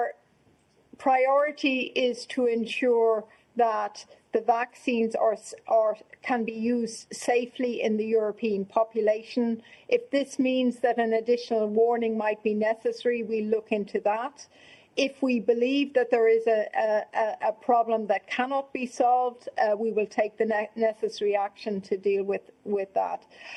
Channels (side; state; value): both; identical; correlation 1.00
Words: priority is to ensure that the vaccines can be used safely in the European population. If this means that an additional warning might be necessary, we look into that. If we believe that there is a problem that cannot be solved, we will take the necessary action to deal with that.